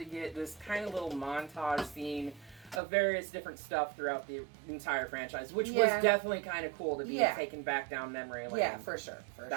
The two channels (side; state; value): left; drops out; at 2.8 s